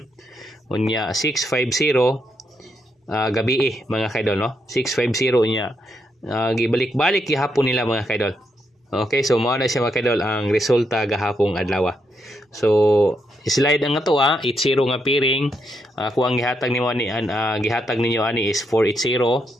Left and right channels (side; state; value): both; normal; correlation 0.79